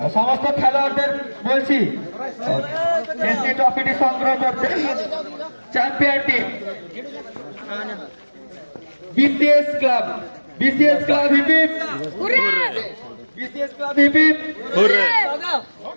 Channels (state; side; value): inverted; both; correlation -1.00